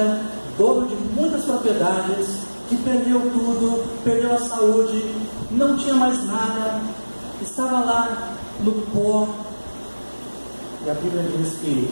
dono de muitas propriedades, que perdeu tudo, perdeu a saúde, não tinha mais nada, estava lá no pó. E a Bíblia diz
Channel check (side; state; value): both; inverted; correlation -1.00